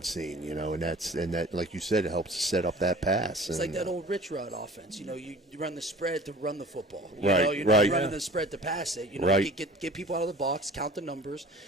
seen, and that like you said, it helps to set up that pass. It's like that old Rich Rod offense. You run the spread to run the football. Right. You're right. running the spread to pass it. Right. Get people out of the box, count the numbers,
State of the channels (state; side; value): normal; both; correlation 0.44